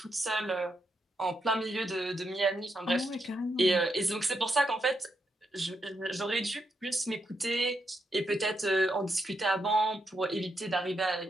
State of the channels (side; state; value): both; normal; correlation 0.81